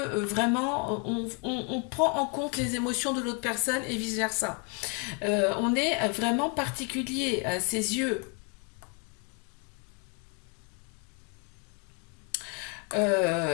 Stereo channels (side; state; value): right; quieter; 36.0 dB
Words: vraiment, on prend en compte les émotions de l'autre personne et vice versa. On est vraiment particulier à ses yeux.